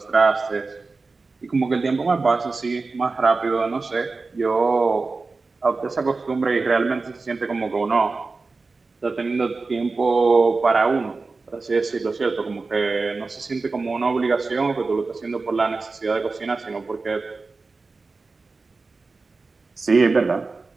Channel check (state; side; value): quieter; left; 3.9 dB